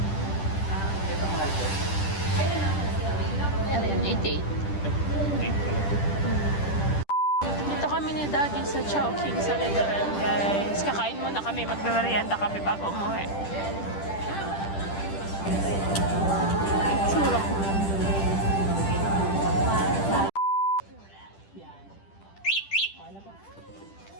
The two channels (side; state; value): right; late; 10 ms